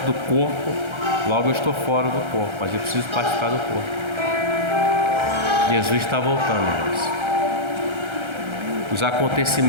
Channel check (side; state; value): left; late; 1.3 ms